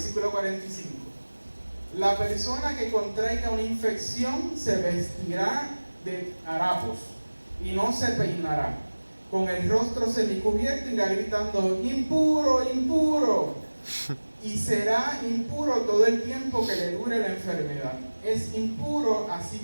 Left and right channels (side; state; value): both; inverted; correlation -1.00